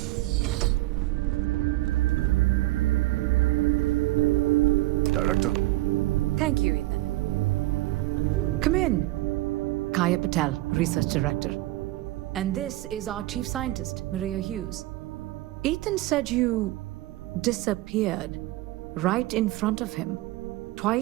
Director? Thank you, Ethan. Kaya Patel, Research Director. And this is our Chief Scientist, Maria Hughes. Ethan said you disappeared right in front of him.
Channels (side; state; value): left; quieter; 18.5 dB